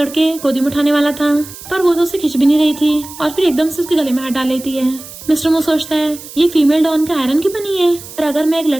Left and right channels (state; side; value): noise; right; hiss, 15 dB below the sound